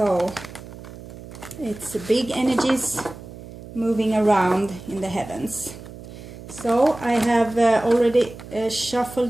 it's big energies moving around in the heavens. So I have already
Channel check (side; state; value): right; noise; hum, 15 dB below the sound